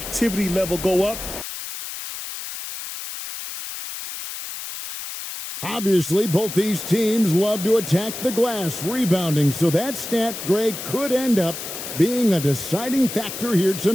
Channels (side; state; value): left; noise; hiss, 8 dB below the sound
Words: level go up. Obviously, both these teams love to attack the glass, rebounding, so that stat, Greg, could end up being a deciding factor here